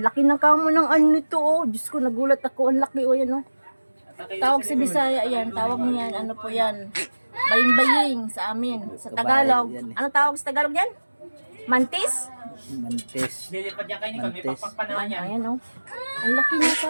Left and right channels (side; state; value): both; inverted; correlation -1.00